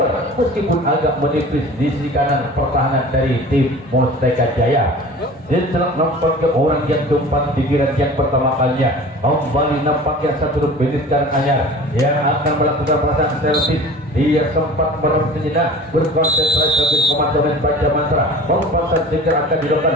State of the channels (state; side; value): normal; both; correlation 0.40